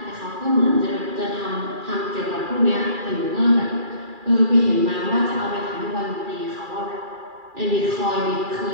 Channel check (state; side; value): late; left; 2.4 ms